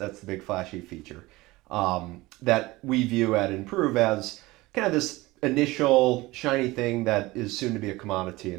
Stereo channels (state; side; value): quieter; left; 20.3 dB